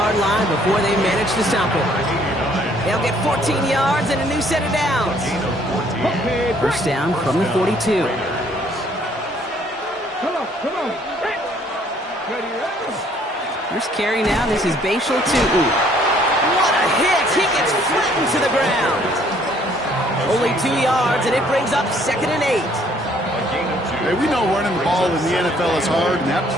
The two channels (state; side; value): normal; both; correlation 0.62